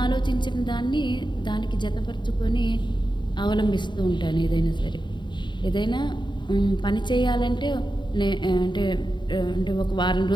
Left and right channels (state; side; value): late; right; 0.22 ms